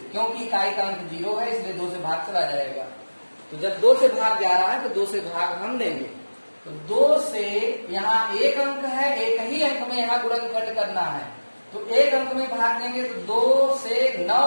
क्योंकि इकाई का अंक 0 है इसलिए 2 से भाग चला जाएगा। तो जब 2 से भाग जा रहा है तो 2 से भाग हम देंगे। तो 2 से यहाँ एक अंक है, एक ही अंक में यहाँ गुणनखंड करना है, तो एक अंक में भाग देंगे। तो 2 से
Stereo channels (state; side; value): inverted; both; correlation -1.00